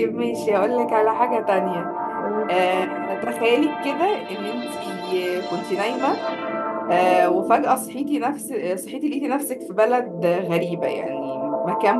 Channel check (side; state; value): both; identical; correlation 1.00